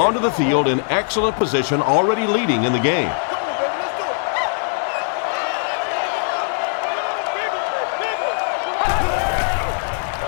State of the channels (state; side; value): silent; right; 65 dB below the other